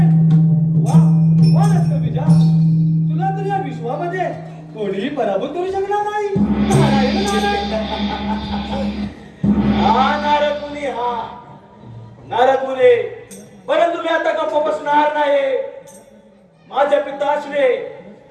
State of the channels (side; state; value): both; identical; correlation 1.00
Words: वा वा रक्तबीजा, तुला तर या विश्वामध्ये कोणीही पराभूत करू शकणार नाही. नारायण नारायण. हा नारद मुनी, हा नारद मुनी, परंतु मी आता गप्प बसणार नाही. माझ्या पिताश्री